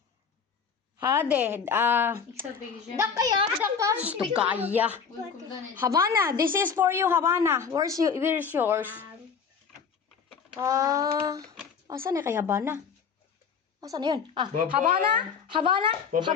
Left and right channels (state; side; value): quieter; right; 6.3 dB